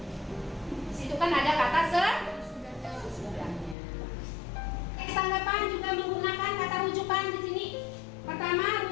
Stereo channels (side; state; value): right; drops out; at 3.8 s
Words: Di situ kan ada kata sesudahnya. Teks tanggapan juga menggunakan kata rujukan di sini. Pertama,